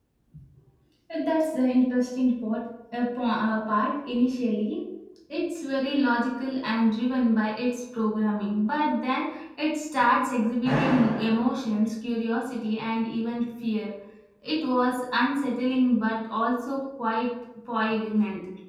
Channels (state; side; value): identical; both; correlation 1.00